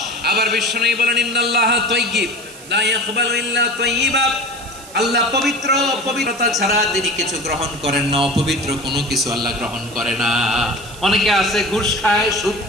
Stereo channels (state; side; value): noise; right; hiss, 18 dB below the sound